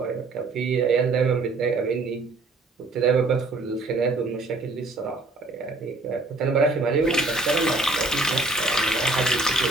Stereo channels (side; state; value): left; quieter; 3.2 dB